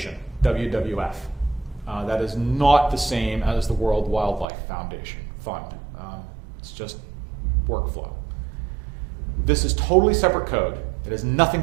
WWF. That is not the same as the World Wildlife Foundation Fund. It's just workflow. This is totally separate code. It has nothing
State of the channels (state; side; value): drops out; left; at 4.5 s